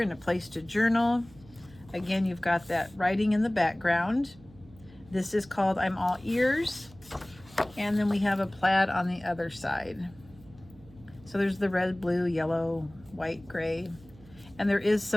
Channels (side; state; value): right; noise; hum, 23 dB below the sound